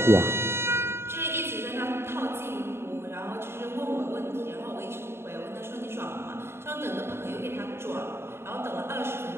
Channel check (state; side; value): late; left; 0.12 ms